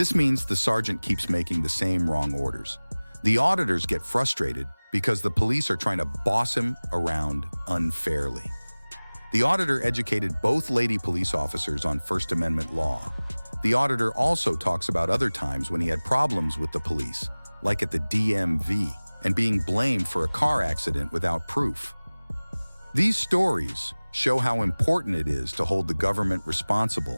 means the sergeant keeps making the same wrong orders. The auditors get frustrated because the police are trying to boss him around unfairly. The auditor educated both lady police officers on First Amendment law. The auditor also talks about other times when he had problems with the police, like at the DMV, and being blamed for a car accident without proof. These stories show how important it is to hold the government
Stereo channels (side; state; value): both; inverted; correlation -1.00